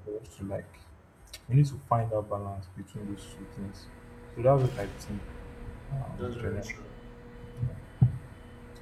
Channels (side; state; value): both; identical; correlation 1.00